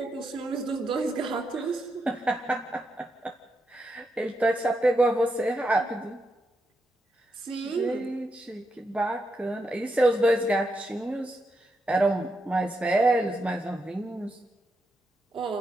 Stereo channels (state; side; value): normal; both; correlation 0.83